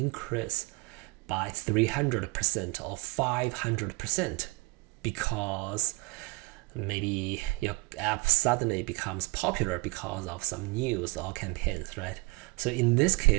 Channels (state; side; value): quieter; left; 26.2 dB